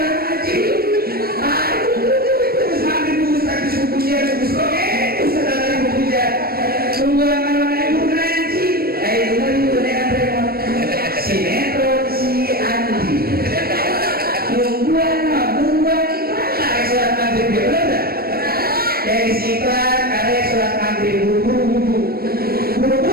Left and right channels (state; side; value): late; left; 0.44 ms